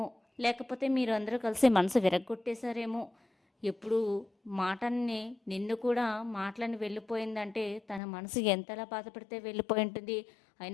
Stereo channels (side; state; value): right; drops out; at 8.0 s